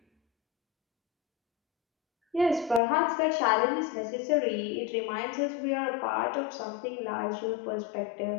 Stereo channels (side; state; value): right; drops out; at 2.8 s